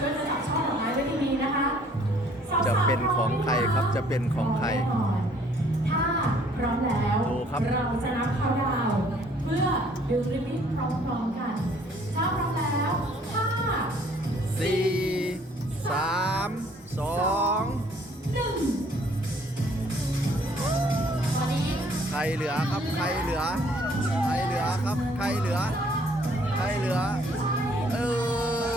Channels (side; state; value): both; normal; correlation 0.60